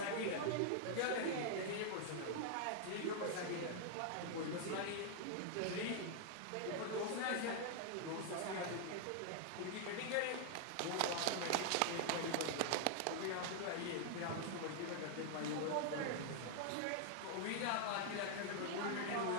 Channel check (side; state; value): both; different; correlation 0.00